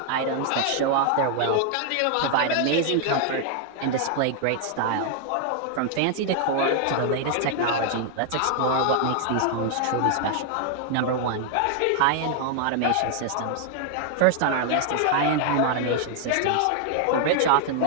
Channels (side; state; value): both; different; correlation 0.00